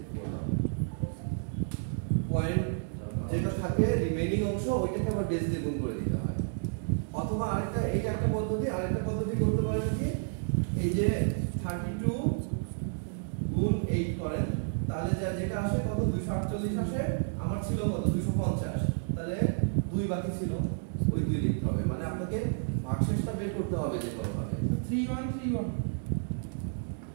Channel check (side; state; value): left; silent; 57 dB below the other